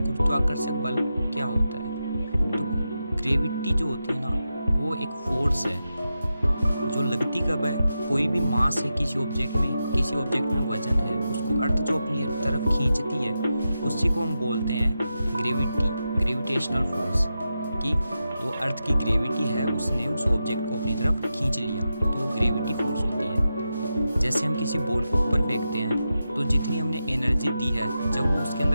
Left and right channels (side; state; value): both; inverted; correlation -0.90